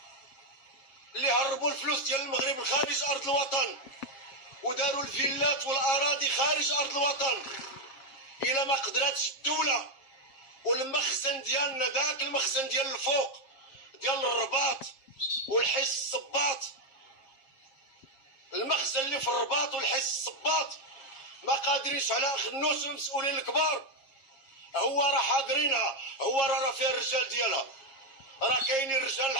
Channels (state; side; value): late; right; 7.4 ms